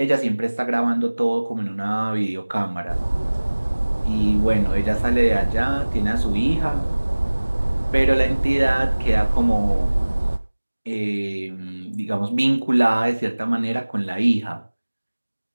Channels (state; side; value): inverted; both; correlation -1.00